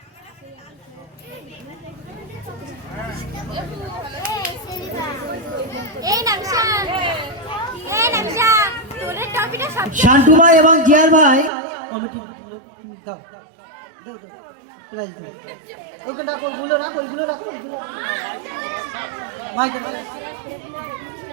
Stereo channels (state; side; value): drops out; left; at 11.5 s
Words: শান্তু ভাই এবং জিয়ার ভাই কমিটি দাও, দাও, দাও, প্রাইজ দাও। ওইখানে রাখো, ওইগুলো রাখো, ওইগুলো রাখো, ওইগুলো মাইকে দাও।